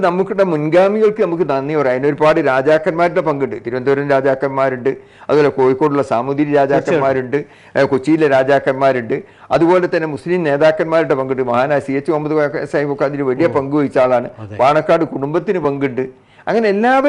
നമുക്കിടെ മുൻഗാമികൾക്ക് നമുക്ക് നന്ദി പറയാം. അതിനൊരുപാട് രാജാക്കന്മാരുടെ പങ്കുണ്ട്. തിരുവനന്തപുരം രാജാക്കന്മാരുണ്ട്, അതുപോലെ കോഴിക്കോടുള്ള സാമൂതിരി രാജാക്കന്മാരുണ്ട്, കൊച്ചിയിലെ രാജാക്കന്മാരുണ്ട്, അതുപോലെ തന്നെ മുസ്ലിം നേതാക്കന്മാരുടെ പങ്കുണ്ട്. മഹാനായ CH മുഹമ്മദ് സാഹിബൊക്കെ അതിന് വലിയ പങ്കുവഹിച്ച ആളാണ്. പാണക്കാട് കുടുംബത്തിന് പങ്കുണ്ട്. അങ്ങനെ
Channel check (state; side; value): identical; both; correlation 1.00